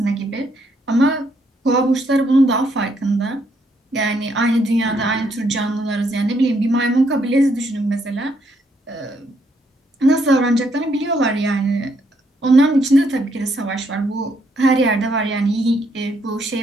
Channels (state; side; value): normal; both; correlation 0.73